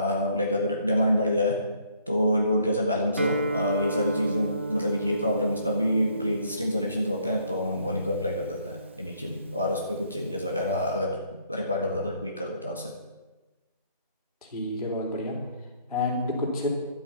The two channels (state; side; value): inverted; both; correlation -0.65